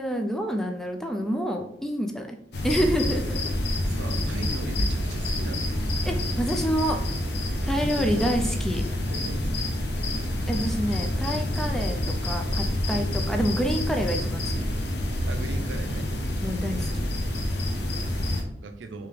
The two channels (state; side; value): normal; both; correlation 0.80